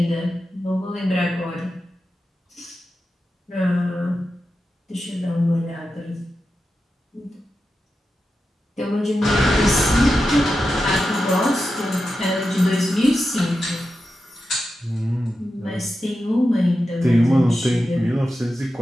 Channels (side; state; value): both; normal; correlation 0.90